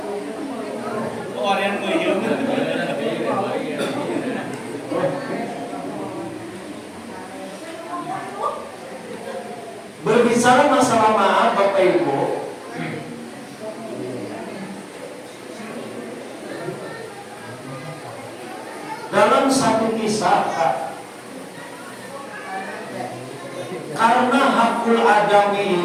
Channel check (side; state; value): both; identical; correlation 1.00